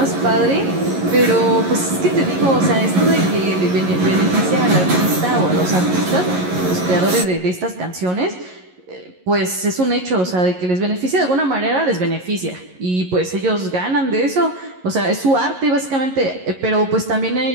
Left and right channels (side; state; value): left; late; 11 ms